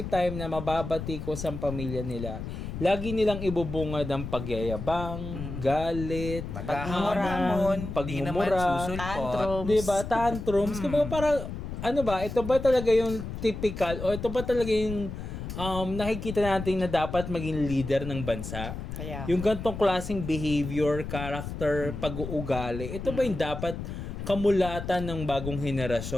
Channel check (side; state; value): left; noise; rumble, 7 dB below the sound